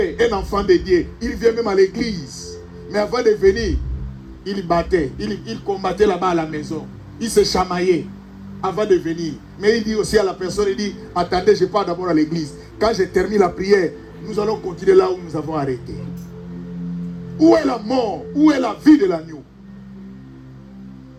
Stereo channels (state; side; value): identical; both; correlation 1.00